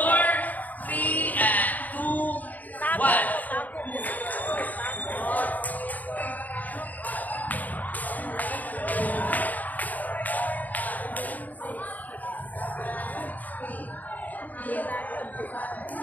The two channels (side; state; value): right; late; 0.080 ms